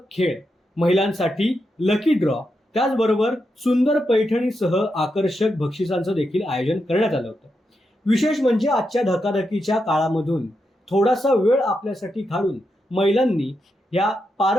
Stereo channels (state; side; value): normal; both; correlation 0.85